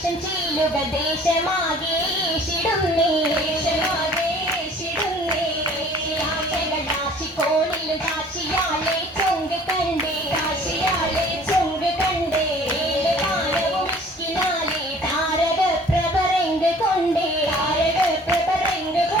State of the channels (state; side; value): normal; both; correlation 0.51